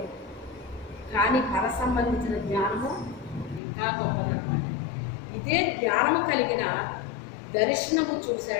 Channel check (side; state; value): right; drops out; at 3.6 s